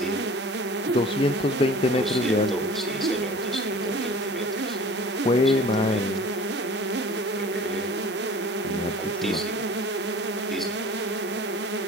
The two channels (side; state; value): both; normal; correlation 0.44